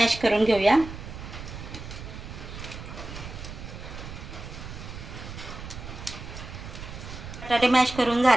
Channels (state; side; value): noise; right; rumble, 11 dB below the sound